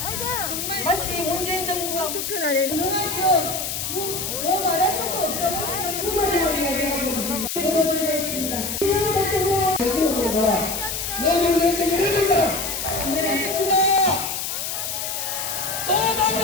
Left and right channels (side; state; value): left; noise; hiss, 3 dB below the sound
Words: 정말 마치 문재인 정부가 투표 날에 운영하시어 뭐 말할 것도 없다고 후보자리가 되어가지고 보여드리고 있습니다. 내년 예정이 이릅니다. 또